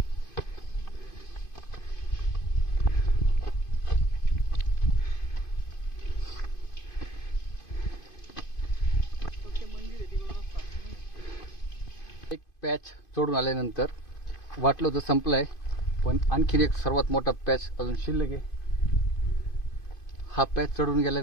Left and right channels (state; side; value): late; right; 2.5 ms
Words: एक पॅच सोडून आल्यानंतर वाटलं होतं संपलाय, पण आणखीन एक सर्वात मोठा पॅच अजून शिल्लक आहे. हा पॅच चढून